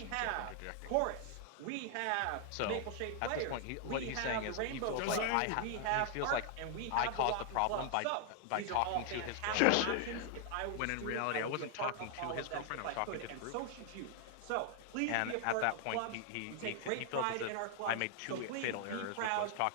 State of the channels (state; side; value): different; both; correlation 0.00